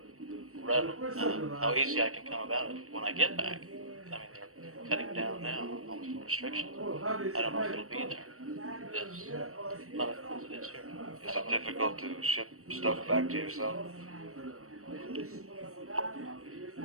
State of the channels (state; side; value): late; left; 0.64 ms